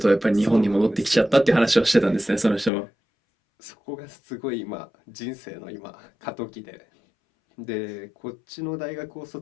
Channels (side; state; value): right; drops out; at 2.7 s